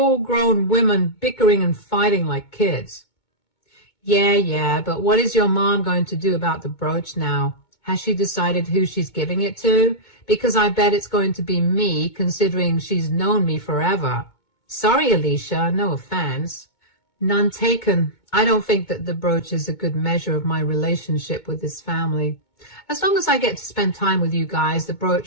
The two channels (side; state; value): right; late; 2.2 ms